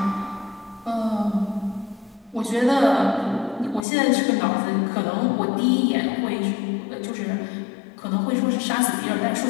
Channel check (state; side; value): drops out; right; at 3.9 s